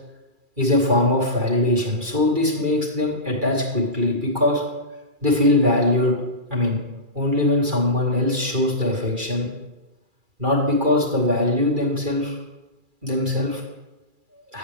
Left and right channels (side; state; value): left; late; 2.3 ms